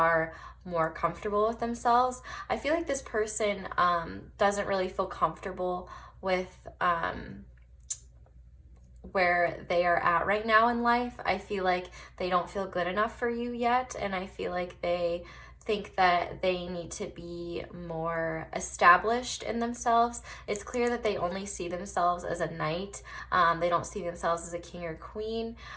more comfortable with themselves. I feel like this person doesn't really feel comfortable with where they are at right now in life. I feel like they don't feel good enough for you yet, and I feel like they think that they need to be more established in themselves. It's clear that they only see themselves as a knight. They don't see themselves as a king or queen.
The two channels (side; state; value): both; identical; correlation 1.00